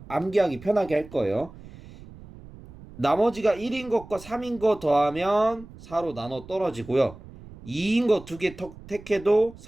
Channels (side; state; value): right; noise; rumble, 18 dB below the sound